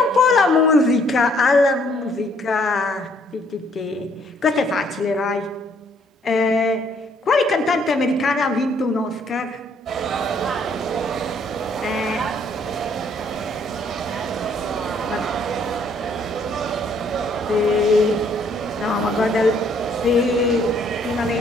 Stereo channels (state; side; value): normal; both; correlation 0.65